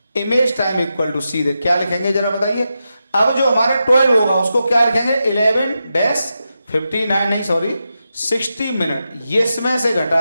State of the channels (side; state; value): both; inverted; correlation -0.88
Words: इमेज टाइम इक्वल टू सीधे क्या लिखेंगे जरा बताइए। अब जो हमारे 12 होगा उसको क्या लिखेंगे 60 मिनट, ये इसमें से